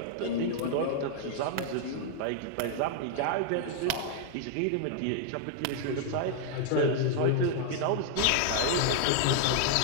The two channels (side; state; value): both; different; correlation 0.00